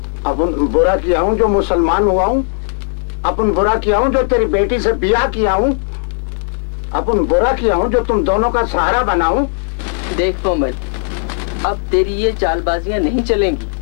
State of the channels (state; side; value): silent; right; digital silence